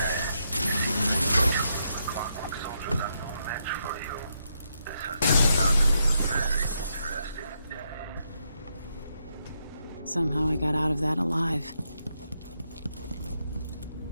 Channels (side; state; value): both; inverted; correlation -0.80